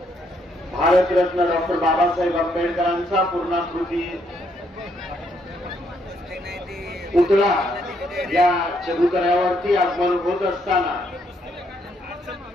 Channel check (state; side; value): normal; both; correlation 0.73